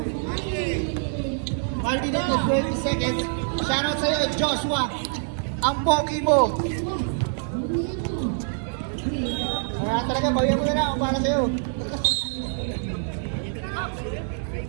Martin at 20 seconds. Shoutout sa'yo, Joshua. Ang pogi mo. Wala talaga, bawian mo na lang para sa'yo.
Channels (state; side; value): silent; left; 62 dB below the other